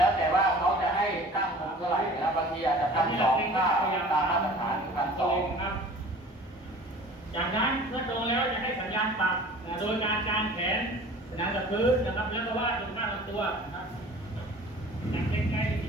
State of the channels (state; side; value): normal; both; correlation 0.45